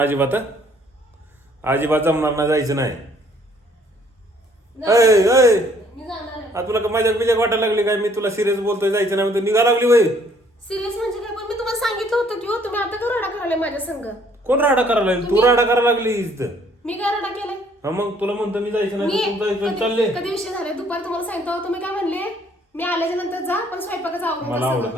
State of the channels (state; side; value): normal; both; correlation 0.62